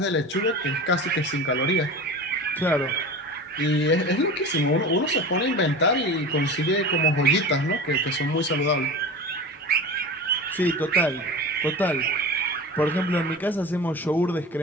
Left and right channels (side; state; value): both; normal; correlation 0.31